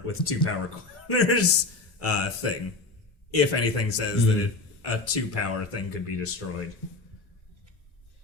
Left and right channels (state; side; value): quieter; right; 3.4 dB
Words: with 2 power corners thing. If anything says that a 2 power thing could be destroyed.